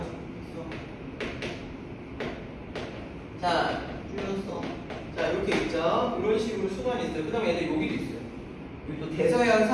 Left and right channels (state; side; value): identical; both; correlation 1.00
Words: 자, 줄였어. 자, 이렇게 있죠. 식으로 순환이 있어요. 그 다음에 얘들 여기도 있어요. 여기 또 대서양